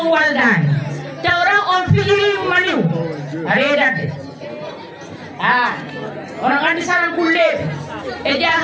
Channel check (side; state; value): both; identical; correlation 1.00